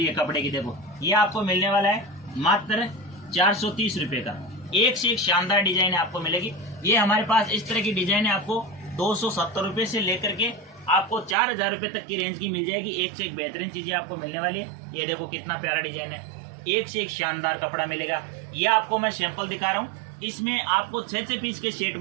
है। कपड़े की देखो ये आपको मिलने वाला है मात्र 430 रुपये का। एक से एक शानदार डिजाइन आपको मिलेगी। ये हमारे पास इस तरह की डिजाइन है, आपको 270 रुपये से लेकर के आपको 4000 रुपये तक की रेंज की मिल जाएगी। एक से एक बेहतरीन चीजें आपको मिलने वाली है। ये देखो कितना प्यारा डिजाइन है, एक से एक शानदार कपड़ा मिलेगा। ये आपको मैं सैंपल दिखा रहा हूँ। इसमें आपको 6 पीस के सेट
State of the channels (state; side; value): drops out; left; at 11.4 s